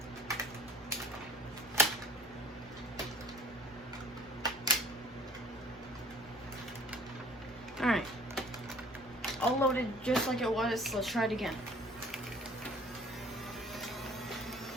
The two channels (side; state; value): both; normal; correlation 0.49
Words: Alright. All loaded just like it was. Let's try it again.